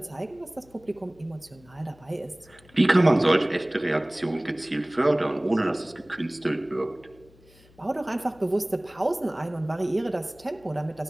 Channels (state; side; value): noise; left; hum, 27 dB below the sound